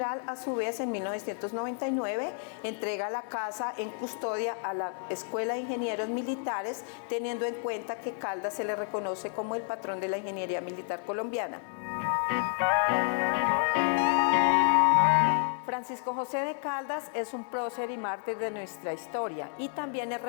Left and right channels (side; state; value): right; silent; 55 dB below the other